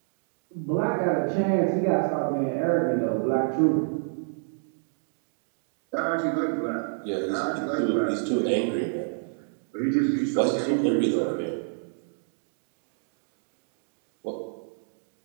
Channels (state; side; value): silent; left; digital silence